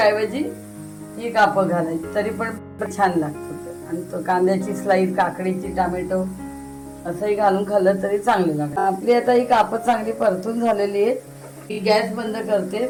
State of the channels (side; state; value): both; identical; correlation 1.00